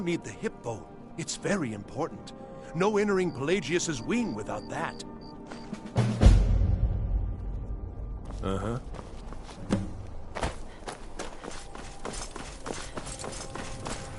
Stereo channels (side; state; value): both; identical; correlation 1.00